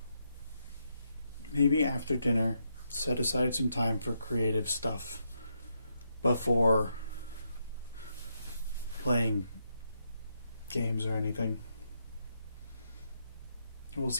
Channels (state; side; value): inverted; both; correlation -0.80